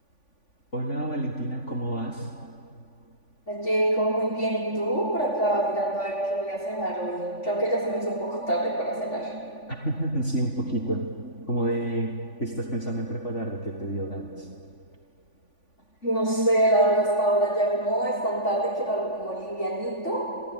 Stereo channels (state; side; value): late; right; 3.5 ms